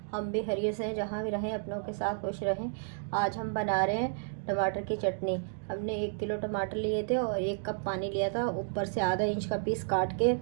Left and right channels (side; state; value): left; silent; digital silence